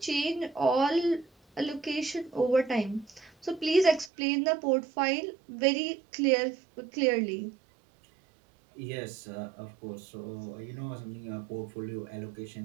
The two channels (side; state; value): left; drops out; at 4.1 s